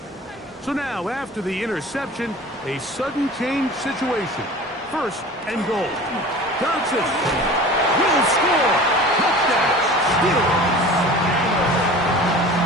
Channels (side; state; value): both; normal; correlation 0.40